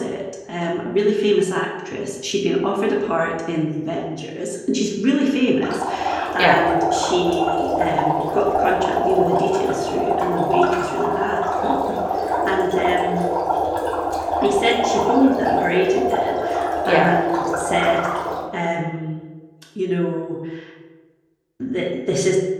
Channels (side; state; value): both; identical; correlation 1.00